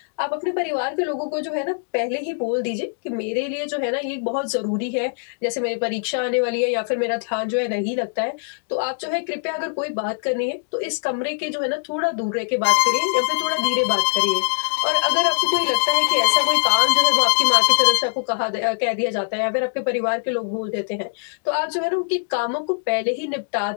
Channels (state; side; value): silent; right; digital silence